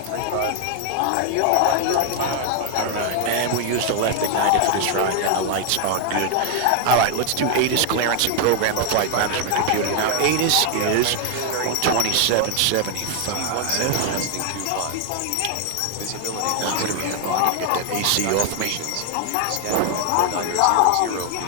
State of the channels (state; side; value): different; both; correlation 0.00